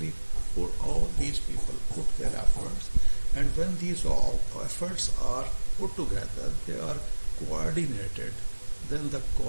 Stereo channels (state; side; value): inverted; both; correlation -1.00